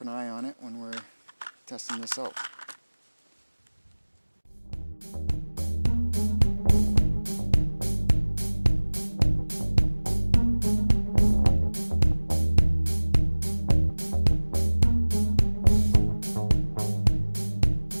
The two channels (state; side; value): inverted; both; correlation -1.00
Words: an eye on it when we're testing this out.